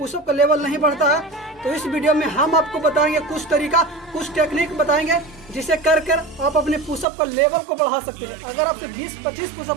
का लेवल नहीं बढ़ता है। तो इस वीडियो में हम आपको बताएंगे कुछ तरीका, कुछ टेक्निक बताएंगे जिसे कर आप अपने पुशअप का लेवल को बढ़ा सकते हैं। अगर आपसे 20-25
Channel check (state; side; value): drops out; left; at 7.1 s